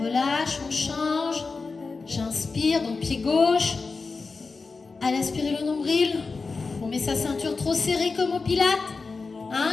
relâche, on change. J'inspire, donc pied gauche. Allez, inspirez le nombril. On met sa ceinture trop serrée comme au pilates.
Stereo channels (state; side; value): quieter; right; 4.3 dB